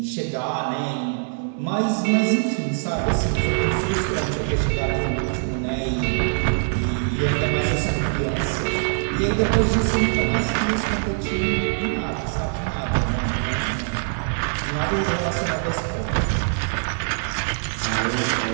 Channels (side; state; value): left; silent; 61 dB below the other